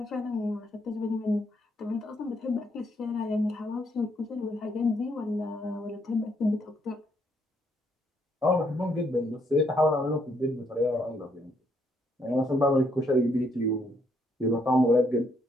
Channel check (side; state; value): both; normal; correlation 0.72